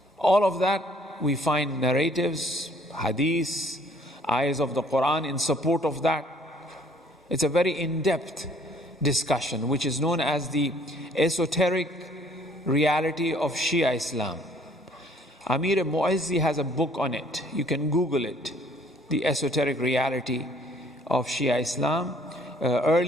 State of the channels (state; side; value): normal; both; correlation 0.59